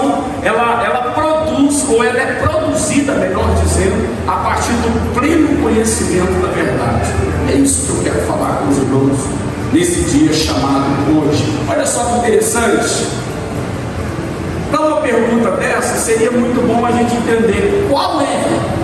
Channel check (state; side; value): identical; both; correlation 1.00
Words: ela produz, ou ela é produzida, melhor dizendo, a partir do pleno conhecimento da verdade. É isso que eu quero falar com os irmãos nesse dia chamado hoje. Olha só que interessante. Para uma pergunta dessa, seria muito bom a gente entender qual é,